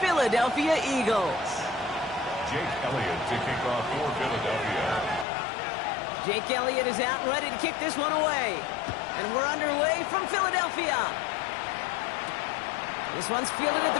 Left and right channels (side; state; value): right; drops out; at 5.2 s